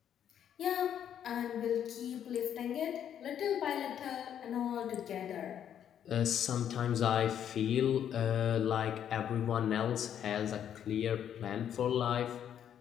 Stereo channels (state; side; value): quieter; right; 9.5 dB